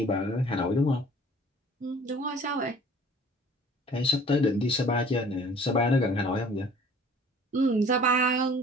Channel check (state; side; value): normal; both; correlation 0.49